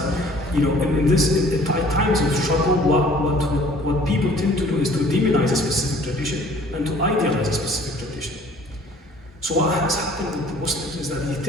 in times of struggle, what people tend to do is to demonize a specific tradition and to idealize a specific tradition. So what has happened with the Muslims is that they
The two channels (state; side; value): normal; both; correlation 0.53